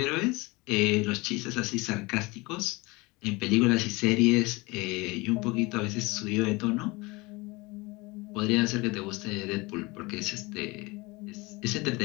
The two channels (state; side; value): quieter; right; 24.2 dB